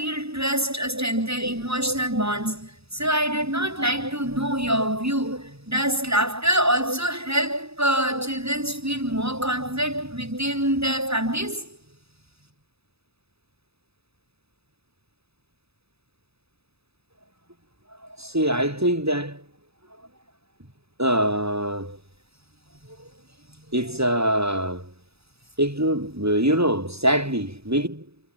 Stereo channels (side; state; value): left; late; 0.78 ms